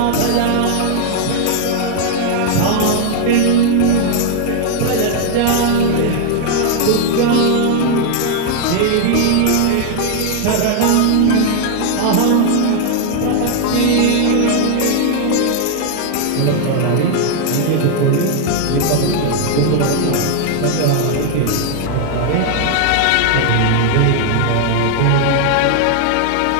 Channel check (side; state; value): both; different; correlation 0.00